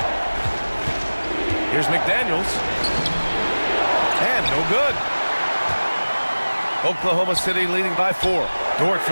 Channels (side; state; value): both; inverted; correlation -1.00